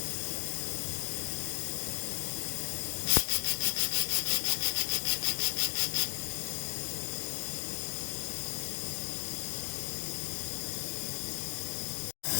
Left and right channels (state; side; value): silent; right; digital silence